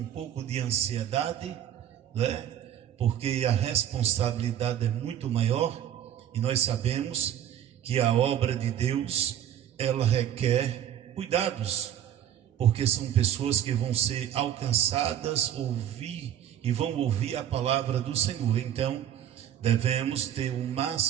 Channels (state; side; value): quieter; left; 10.4 dB